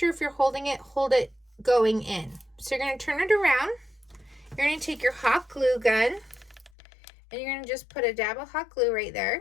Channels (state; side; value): drops out; right; at 6.7 s